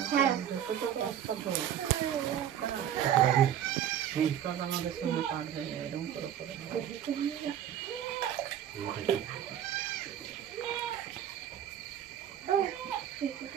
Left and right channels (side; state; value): left; quieter; 10.2 dB